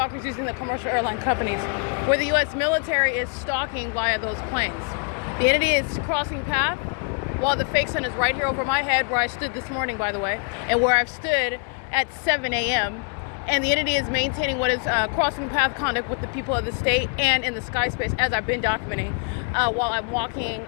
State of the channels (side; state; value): right; quieter; 39.1 dB